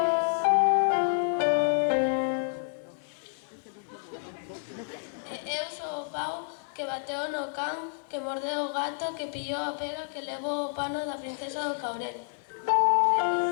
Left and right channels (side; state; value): right; silent; digital silence